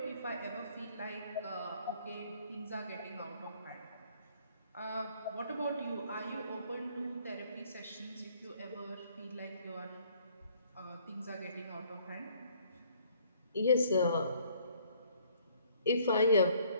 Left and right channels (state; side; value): inverted; both; correlation -0.62